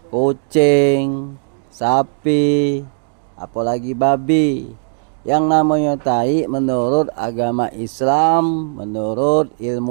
kucing, sapi, apalagi babi. Yang namanya tai menurut agama Islam, menurut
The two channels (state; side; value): silent; left; digital silence